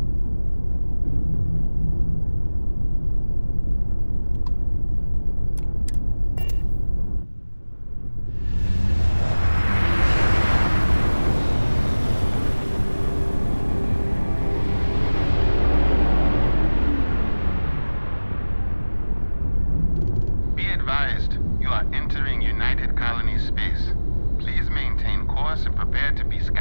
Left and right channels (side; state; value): both; inverted; correlation -1.00